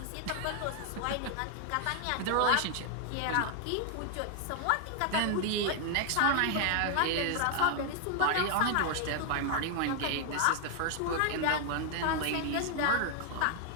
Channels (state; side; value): different; both; correlation 0.00